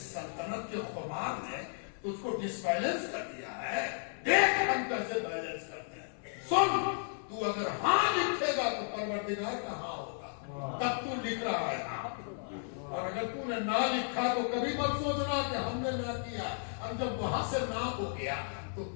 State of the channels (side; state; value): right; silent; 55 dB below the other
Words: سلطنت کے خمار نے تجھ کو ڈس بیلنس کر دیا ہے, دیکھ ہم کیسے بیلنس کرتے ہیں. سن, تو اگر ہاں لکھے گا تو پروردگار کا ہاں ہوگا, تب تو لکھ رہا ہے ہاں. اور اگر تو نے نہ لکھا تو کبھی مت سوچنا کہ ہم نے نہ کیا, اور جب وہاں سے نہ ہو گیا تو